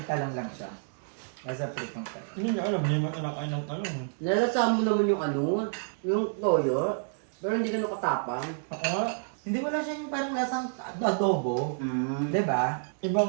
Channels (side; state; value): left; silent; digital silence